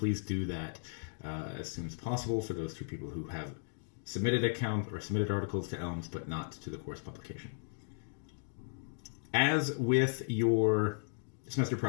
do that as soon as possible for those 2 people who have submitted account or submitted articles to Elms but not to the course publication. As with your semester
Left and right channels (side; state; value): right; silent; digital silence